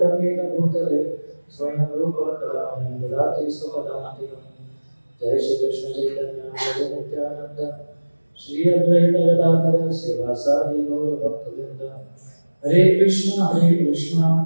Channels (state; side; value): inverted; both; correlation -1.00